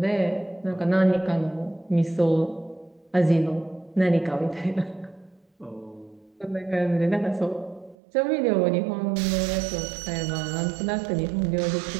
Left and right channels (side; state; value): left; drops out; at 8.0 s